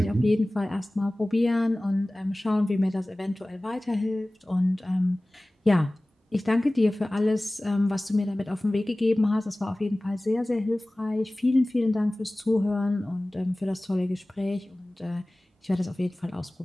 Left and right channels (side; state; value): both; normal; correlation 0.98